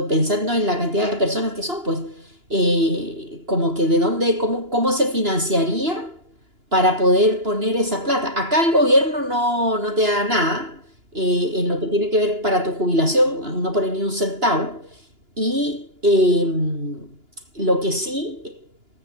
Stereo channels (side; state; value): left; late; 2.9 ms